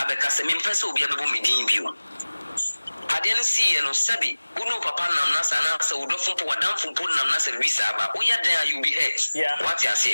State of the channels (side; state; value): both; inverted; correlation -1.00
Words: me pese obi abebo medin bio ade no see no sabi unu papa nam na sa na sa udofo po wadamfo po nam na sa visa aba oya dan you be hurt what you